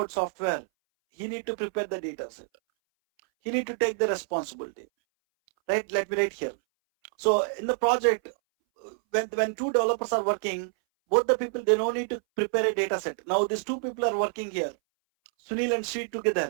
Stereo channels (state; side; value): silent; left; 60 dB below the other